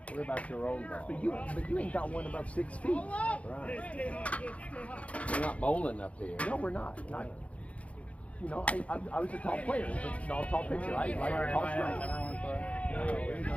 What about your own ball? But you ain't got one above 6 feet. Right. We're not bowling up here. No, we're not. You know, I was a tall player, but not a tall pitcher. I like a tall strike.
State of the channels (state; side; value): late; right; 0.065 ms